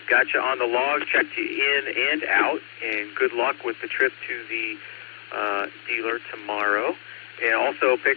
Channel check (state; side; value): silent; right; 62 dB below the other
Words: Got you on the log, checked you in and out, and good luck with the trip to the dealer tomorrow. And also